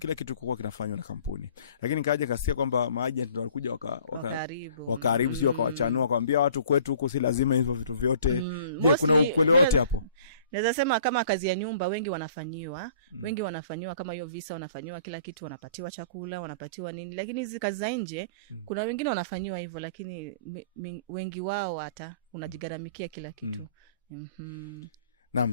kitu kulikuwa kinafanywa na kampuni. Lakini kaja kasikia kwamba maagent ndio walikuja wakaribu sio wakawachanua kwambia watu kwetu huko si lazima hivyo vitu vyote. Je, kuna ukweli wote hapo? Naweza sema kama kazi ya nyumba wengi wanafanyiwa, wengi wanafanyiwa kama hiyo visa wanafanyiwa kila kitu, wanapatiwa chakula, wanapatiwa nini. Lakini hizi kazi za nje kuna wengine wanafanyiwa hivyo lakini wengi wao hata unajigaramikia kila kitu.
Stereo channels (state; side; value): inverted; both; correlation -0.51